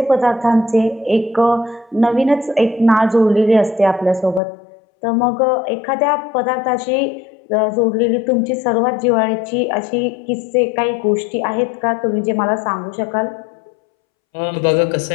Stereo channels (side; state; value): right; drops out; at 4.4 s